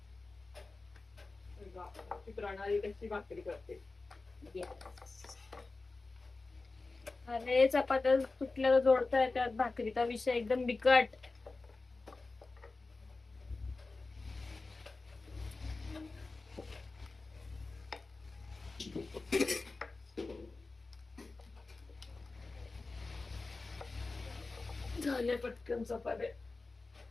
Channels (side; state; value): right; quieter; 3.6 dB